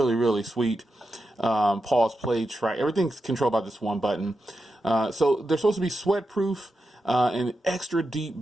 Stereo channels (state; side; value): normal; both; correlation 0.88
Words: really sweet. Pause, play, track. Everything's controlled by this one button. So they're supposed to be sweat proof and extra deep